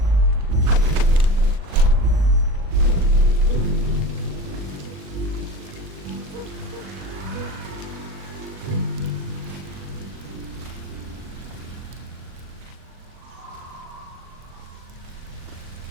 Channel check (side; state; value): left; late; 39 ms